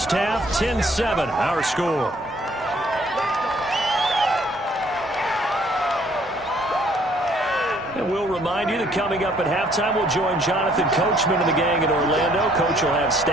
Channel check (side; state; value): both; normal; correlation 0.62